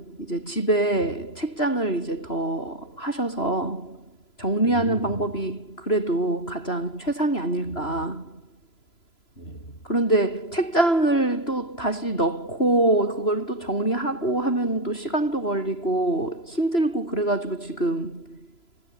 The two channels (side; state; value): right; late; 3.0 ms